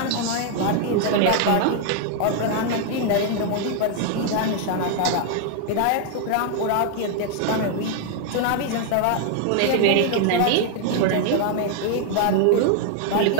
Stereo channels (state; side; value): different; both; correlation 0.00